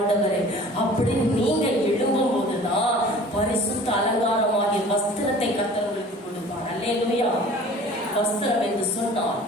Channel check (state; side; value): normal; both; correlation 0.46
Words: அப்படி நீங்க எழும்பும் போதுதான் பரிசுத்த அலங்காரமாகிய வஸ்திரத்தை கர்த்தர் உங்களுக்கு கொடுப்பார். அல்லேலூயா. வஸ்திரம் என்று சொன்னால்